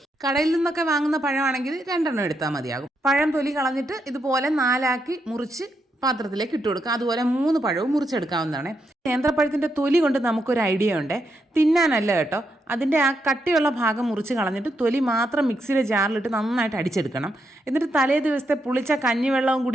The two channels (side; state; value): both; normal; correlation 0.81